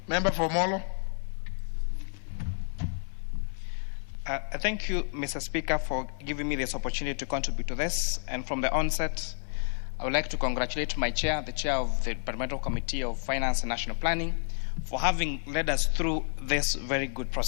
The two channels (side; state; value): right; silent; digital silence